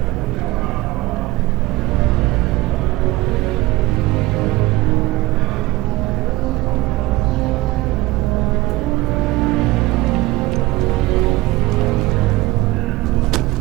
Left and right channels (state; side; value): quieter; left; 19.3 dB